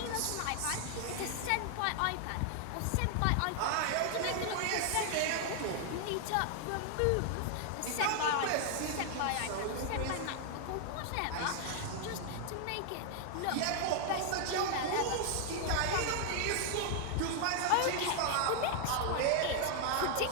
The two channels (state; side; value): different; both; correlation 0.00